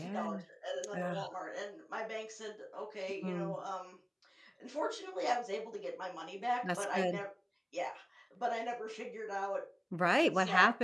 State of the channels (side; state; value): both; identical; correlation 1.00